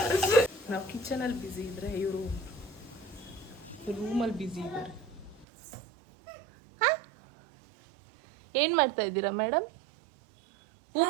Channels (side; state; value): left; drops out; at 5.5 s